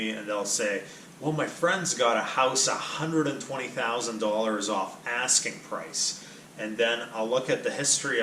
and they'll say, well, my friend's got a house $120,000 off asking price. And then I'll look at the history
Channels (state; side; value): identical; both; correlation 1.00